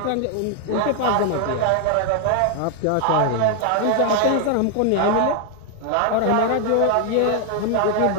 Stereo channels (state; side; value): different; both; correlation 0.00